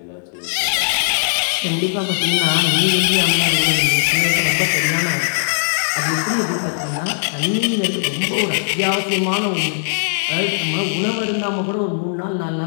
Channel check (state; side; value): silent; right; digital silence